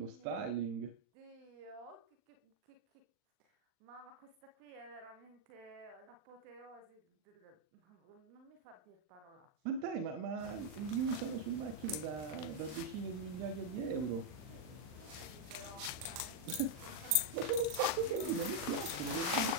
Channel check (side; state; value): left; late; 39 ms